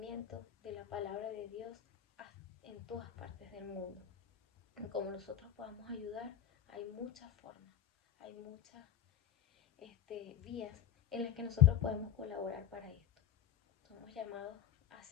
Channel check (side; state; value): right; quieter; 10.1 dB